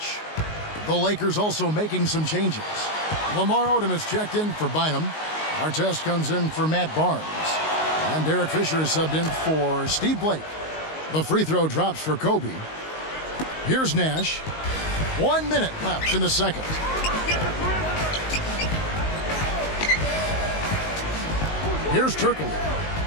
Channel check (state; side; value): late; right; 19 ms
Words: The Lakers also making some changes. Lamar Odom is checked in for Bynum. Artest comes in for Matt Barnes. And Derek Fisher is subbed in for Steve Blake. The free throw drops for Kobe. Here's Nash. 1 minute left in the second. Here's